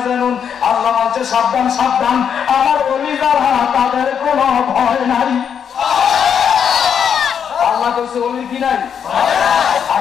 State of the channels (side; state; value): right; quieter; 7.7 dB